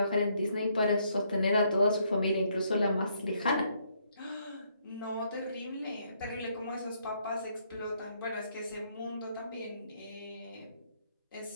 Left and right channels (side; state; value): both; inverted; correlation -0.71